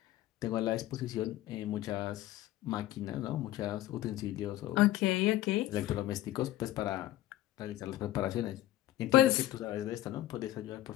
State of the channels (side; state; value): right; quieter; 14.7 dB